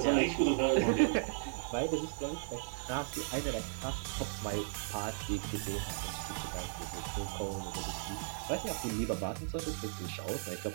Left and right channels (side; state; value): left; silent; digital silence